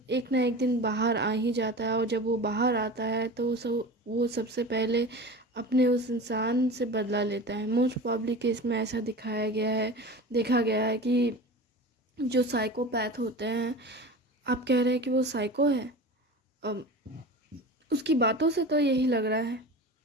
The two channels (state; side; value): normal; both; correlation 0.33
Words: एक ना एक दिन बाहर आ ही जाता है, और जब वो बाहर आता है तो वो सबसे पहले अपने उस इंसान से बदला लेता है। मोस्ट प्रॉब्ली केस में ऐसा देखा गया है कि जो साइकोपैथ होते हैं, आप कह रहे हैं कि वो साइको है, अम, उसकी बातों से तो यही लग रहा है।